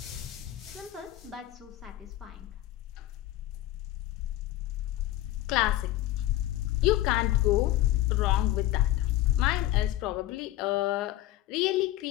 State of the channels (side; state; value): right; quieter; 15.0 dB